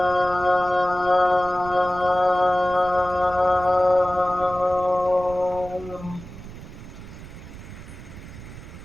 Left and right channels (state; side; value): noise; right; rumble, 15 dB below the sound